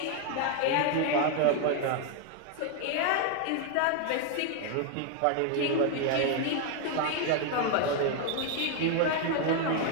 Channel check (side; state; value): both; different; correlation 0.01